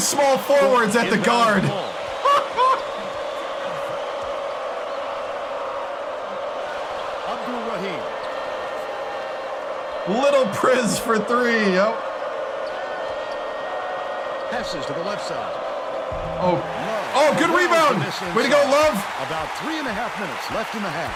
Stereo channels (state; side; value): identical; both; correlation 1.00